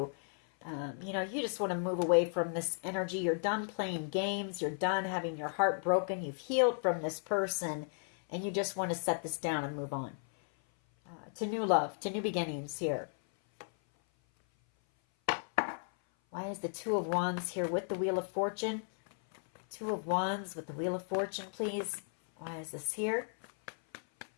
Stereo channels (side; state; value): right; silent; 55 dB below the other